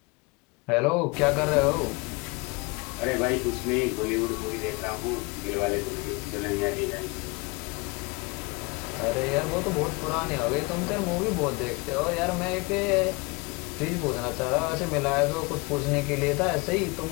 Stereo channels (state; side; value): quieter; right; 27.2 dB